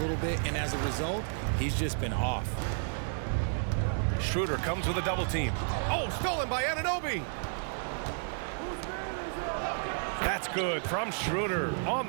bit, and as a result, he's just been off. Schroeder comes with a double team. Oh, stolen by Anunoby. That's good from Schroeder on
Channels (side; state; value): left; silent; digital silence